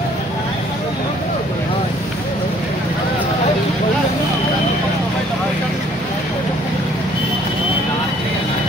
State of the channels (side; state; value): both; normal; correlation 0.60